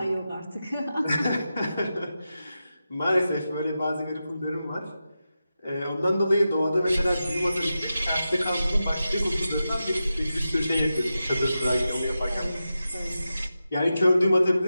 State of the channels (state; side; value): inverted; both; correlation -0.91